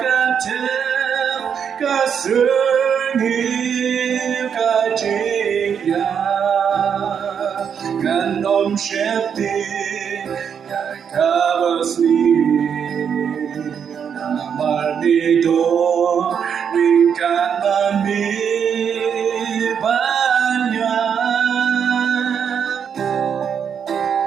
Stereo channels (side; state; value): left; quieter; 7.5 dB